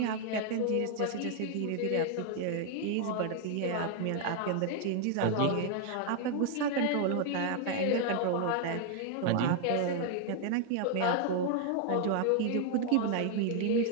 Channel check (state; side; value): different; both; correlation 0.00